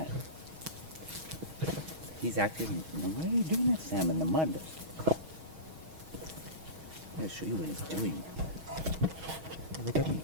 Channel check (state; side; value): late; left; 6.3 ms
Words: He's acting. Why are you doing that, Sam, in the mud? I'll show you what he's doing. Look at me.